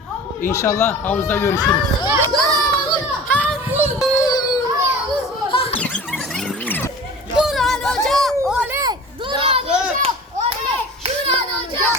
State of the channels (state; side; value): normal; both; correlation 0.39